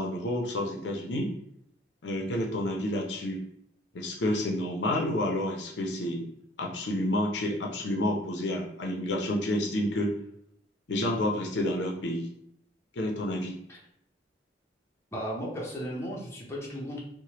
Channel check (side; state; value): both; normal; correlation 0.54